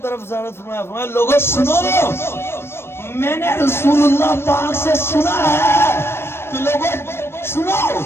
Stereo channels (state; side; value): late; right; 0.12 ms